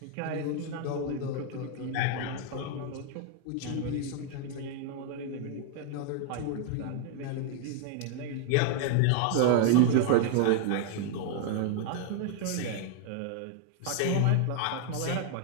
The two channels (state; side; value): different; both; correlation 0.00